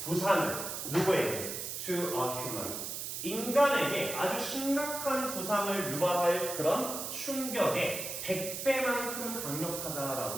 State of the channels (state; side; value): noise; right; hiss, 5 dB below the sound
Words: 부상을 누구에게? To a human. 인간에게 아주 심각한 부상을 유발할 그런 충격에 100배만큼